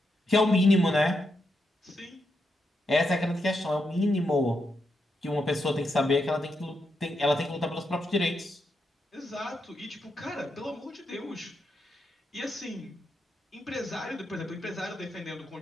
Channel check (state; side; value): normal; both; correlation 0.83